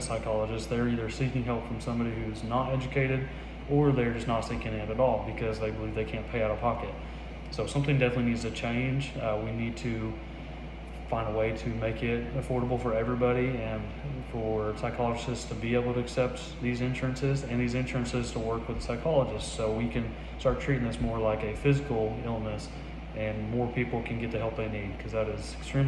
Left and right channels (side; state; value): both; identical; correlation 1.00